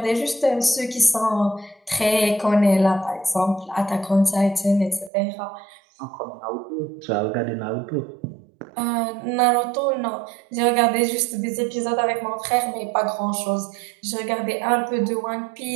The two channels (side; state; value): left; drops out; at 5.1 s